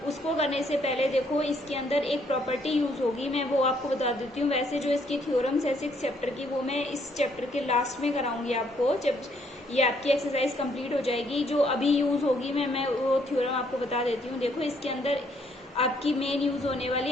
उसको करने से पहले देखो, इसके अंदर एक प्रॉपर्टी यूज होगी, मैं वो आपको बता देती हूँ। वैसे जो इसकी थ्योरम्स है 6 चैप्टर की, वो मैं इस चैप्टर के लास्ट में कराऊंगी आपको, जब ये आपकी एक्सरसाइज कंप्लीट हो जाएगी। जो अभी यूज होगी मैं वो थ्योरम आपको बता देती हूँ। देखो, इसके अंदर आपकी मेन यूज होने वाली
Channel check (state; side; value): normal; both; correlation 0.68